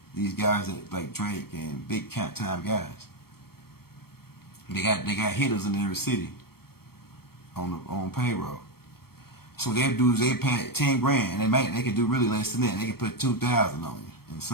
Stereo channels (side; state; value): right; late; 0.94 ms